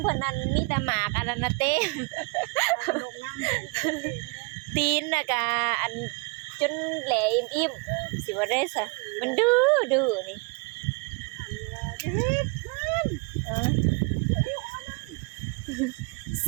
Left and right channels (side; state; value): left; quieter; 30.0 dB